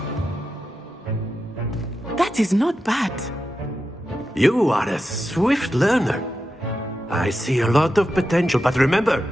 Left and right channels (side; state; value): both; normal; correlation 0.89